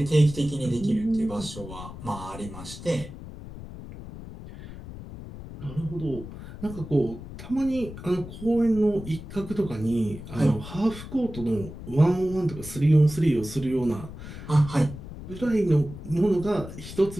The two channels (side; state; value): left; noise; rumble, 12 dB below the sound